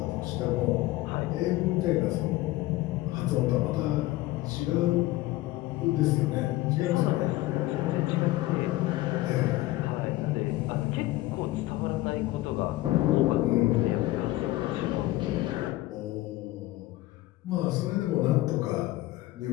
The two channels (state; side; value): quieter; right; 17.4 dB